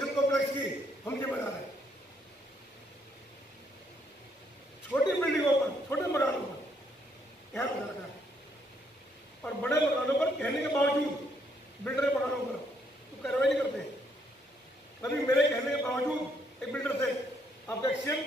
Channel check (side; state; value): both; normal; correlation 0.72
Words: कॉम्प्लेक्स की, हम जिम्मेदार हैं। छोटी बिल्डिंगों पर, छोटे मकानों पर ध्यान रखना है, और बड़े मकानों पर कहने के बावजूद बिल्डर मकानों पर तो कार्रवाई नहीं करते। कभी मेरे कहने के बावजूद एक बिल्डर से आपका एक्सीएम